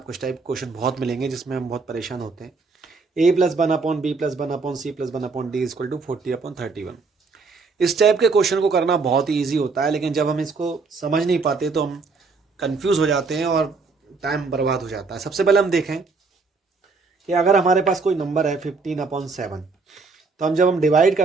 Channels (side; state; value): left; quieter; 4.3 dB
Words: इस टाइप क्वेश्चन बहुत मिलेंगे जिसमें हम बहुत परेशान होते हैं। a+1/b+1/c+1/d=40/31। इस टाइप के क्वेश्चन को करना बहुत ही ईजी होता है, लेकिन जब हम इसको समझ नहीं पाते तो हम कंफ्यूज हो जाते हैं और टाइम बर्बाद हो जाता है। सबसे पहले हम देखें कि अगर हमारे पास कोई नंबर है 15/7, तो जब हम डिवाइड